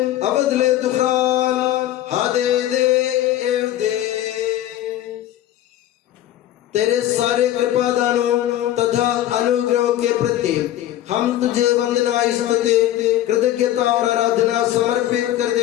Avadle dukhan Hade de evde तेरे सारे कृपादानों तथा अनुग्रह के प्रति हम तुझे वंदना स्तुति कृतज्ञता और आराधना समर्पित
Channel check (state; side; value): quieter; right; 13.1 dB